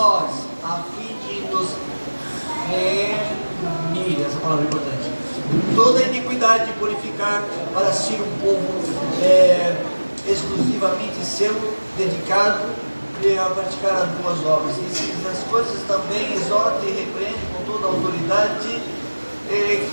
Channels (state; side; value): inverted; both; correlation -1.00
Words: a fim de nos remir, essa palavra é importante, toda iniquidade, purificar para si um povo exclusivamente seu, dedicado a praticar as boas obras. E as coisas também exorta e repreende com toda a autoridade,